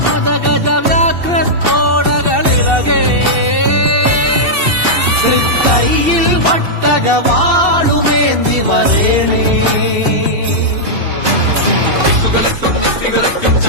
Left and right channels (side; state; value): left; late; 2.7 ms